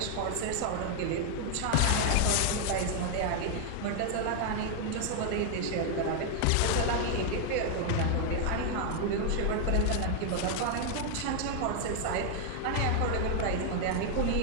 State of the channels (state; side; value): different; both; correlation 0.00